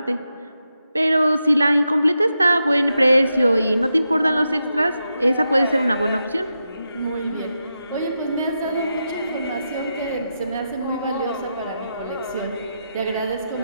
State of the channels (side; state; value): both; inverted; correlation -0.87